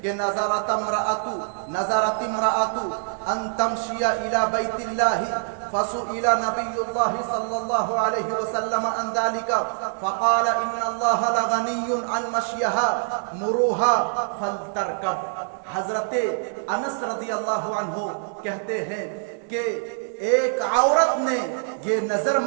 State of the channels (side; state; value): left; silent; digital silence